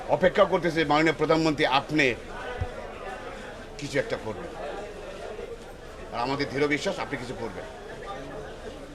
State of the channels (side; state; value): both; identical; correlation 1.00